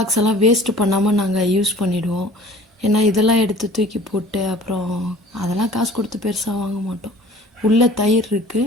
எல்லாம் வேஸ்ட்டு பண்ணாமல் நாங்கள் யூஸ் பண்ணிவிடுவோம். ஏன்னா இதெல்லாம் எடுத்து தூக்கி போட்டு அப்புறம் அதெல்லாம் காசு கொடுத்து பெருசாக வாங்க மாட்டோம். உள்ளே தயிர்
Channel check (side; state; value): both; normal; correlation 0.47